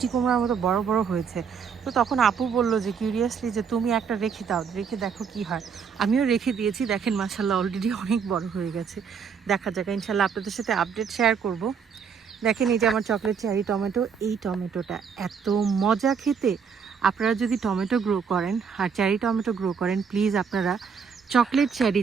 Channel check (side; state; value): left; quieter; 6.5 dB